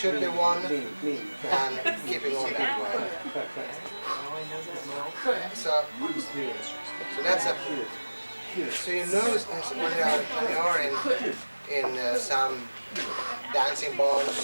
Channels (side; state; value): both; inverted; correlation -1.00